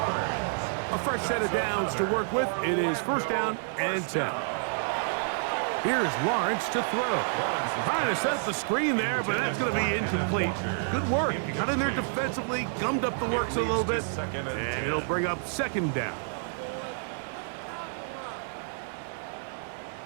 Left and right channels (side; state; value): left; silent; digital silence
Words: A fresh set of downs to work with. It is 1st down and 10. Here's Lawrence to throw. Trying to set up the screen there, but that's going to be incomplete. Good work. He got in there defensively, gummed up the works a little bit, and it'll bring up 2nd down.